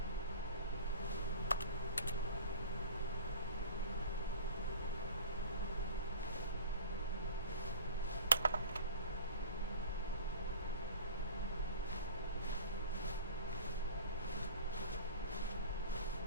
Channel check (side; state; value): both; inverted; correlation -0.40